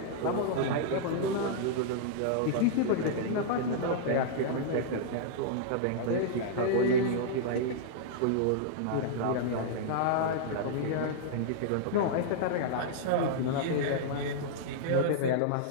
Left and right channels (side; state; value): both; different; correlation -0.02